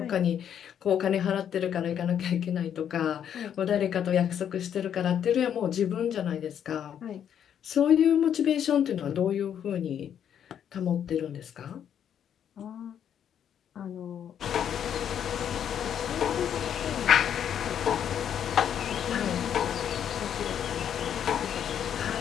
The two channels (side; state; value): right; quieter; 9.1 dB